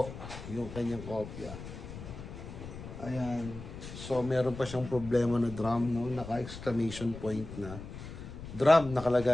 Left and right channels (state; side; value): noise; left; rumble, 11 dB below the sound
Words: yung kanyang kopya. Ayan. So meron pa siyang problema na drum, no? Naka-exclamation point na drum